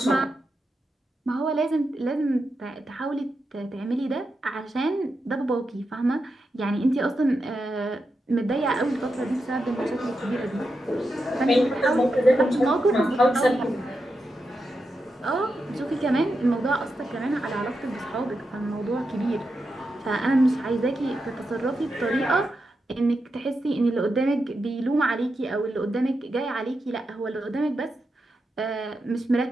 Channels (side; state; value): both; normal; correlation 0.87